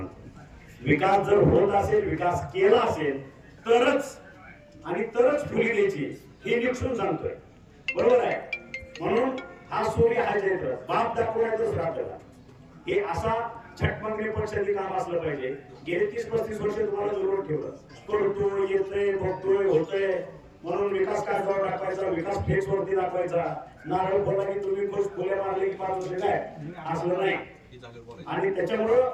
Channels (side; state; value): both; identical; correlation 1.00